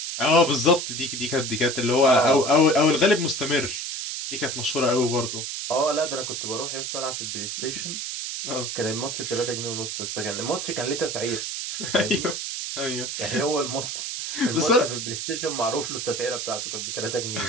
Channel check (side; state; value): right; noise; hiss, 4 dB below the sound